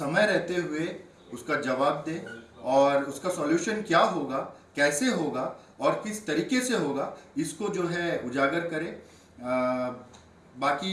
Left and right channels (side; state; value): both; identical; correlation 1.00